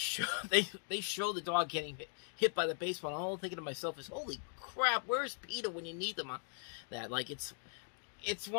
they show the dog getting hit by the baseball. And all I'm thinking to myself is, holy crap, where's PETA when you need them on that? Like, it's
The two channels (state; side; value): silent; right; 52 dB below the other